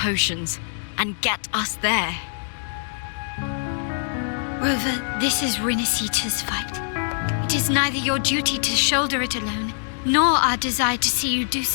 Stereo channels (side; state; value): right; silent; digital silence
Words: and get us there? Rover, this is Rinasita's fight. It is neither your duty to shoulder it alone, nor our desire to see you do